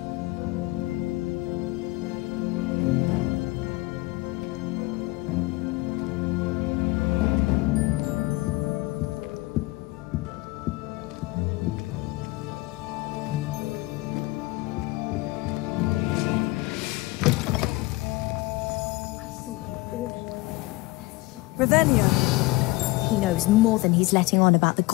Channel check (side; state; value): right; quieter; 21.2 dB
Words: Revelio. He knows more than he's letting on about the